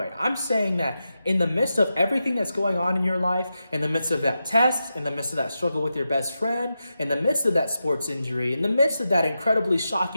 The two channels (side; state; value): both; inverted; correlation -0.89